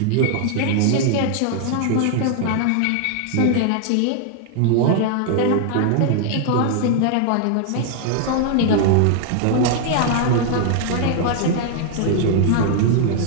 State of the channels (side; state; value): both; different; correlation 0.00